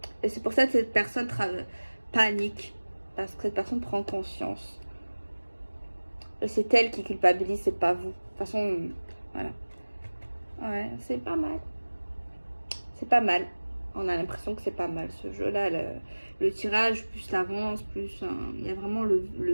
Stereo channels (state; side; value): inverted; both; correlation -1.00